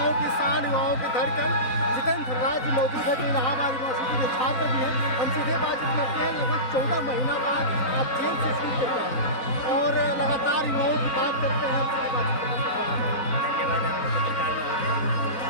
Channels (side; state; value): right; late; 3.9 ms